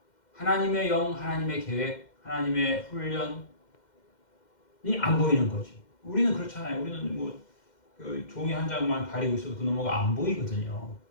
하나님의 영, 하나님의 계획, 하나님의 훈련이 안 보이는 거지. 우리는 그렇잖아요. 우리는 뭐 그 종이 한 장만 가리고 있어도 그 너머가 안 보이거든요.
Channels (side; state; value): right; late; 2.1 ms